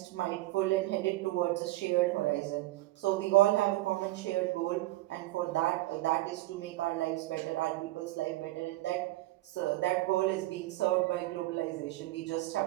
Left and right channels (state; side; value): quieter; left; 18.2 dB